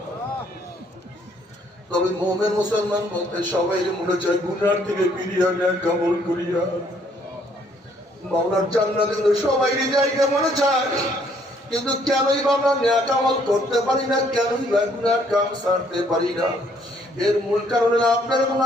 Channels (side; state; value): both; normal; correlation 0.65